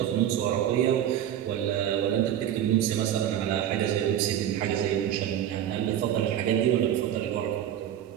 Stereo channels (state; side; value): quieter; left; 10.7 dB